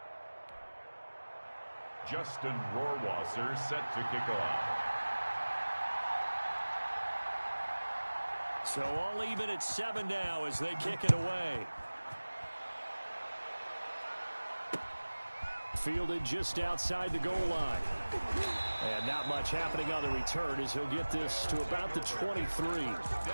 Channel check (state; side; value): inverted; both; correlation -1.00